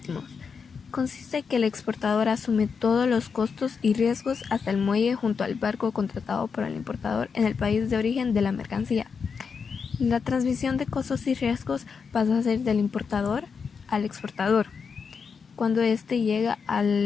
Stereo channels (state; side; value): quieter; right; 5.8 dB